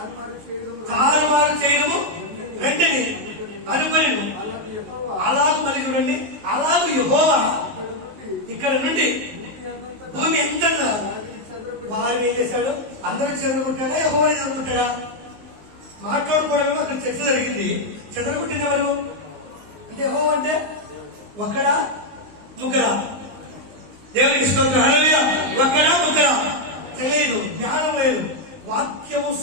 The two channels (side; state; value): left; late; 19 ms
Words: చేయడము తారుమారు చేయడము వెంటనే అనుకొని అలాంటి యెహోవా అలాగు మరి చూడండి, అలాగు యెహోవా ఇక్కడ నుండి భూమి ఎంత వారు ఏం చేశాడు, అందరూ చెదరగొట్టాడా, యెహోవాని చెదరగొట్టాడా? మాట్లాడుకోవడమేమో అక్కడ చర్చ జరిగింది. చెదరగొట్టింది ఎవరు అంటే, యెహోవా అంటే ఒక్కడా ముగ్గురా? దేవునికి స్తోత్రం. హల్లెలూయా. ఒక్కడా ముగ్గురా తెలియదు, జ్ఞానం లేదు. వాక్యము